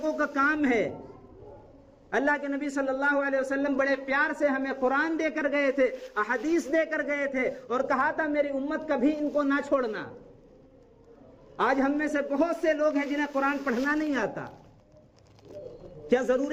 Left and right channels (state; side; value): identical; both; correlation 1.00